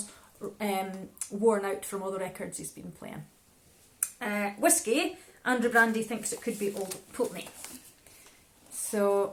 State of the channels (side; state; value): both; identical; correlation 1.00